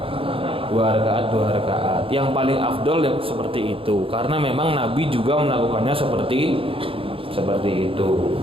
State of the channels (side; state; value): left; late; 0.26 ms